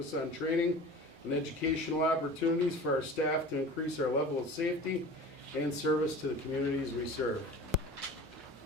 on training and educational opportunities for our staff to increase our level of safety and service to the communities we serve.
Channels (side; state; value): both; normal; correlation 0.38